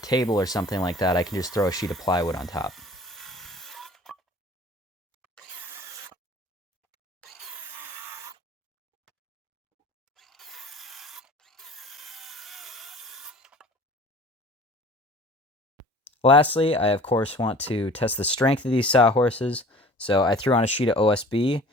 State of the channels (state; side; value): normal; both; correlation 0.46